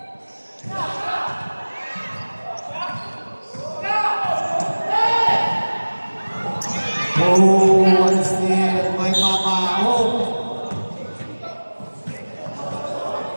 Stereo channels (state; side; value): inverted; both; correlation -1.00